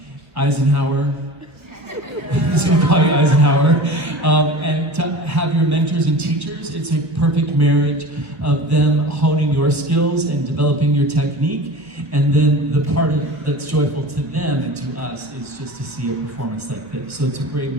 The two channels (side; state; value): left; late; 1.3 ms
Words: Eisenhower. I'm just gonna call you Eisenhower. And to have your mentors and teachers, it's a perfect marriage of them honing your skills and developing your technique. And then the part that's joyful to them and to us is just to see a performance like this. So it's a great